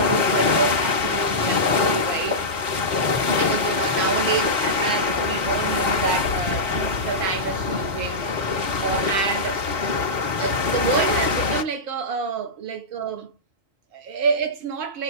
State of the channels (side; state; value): left; late; 4.1 ms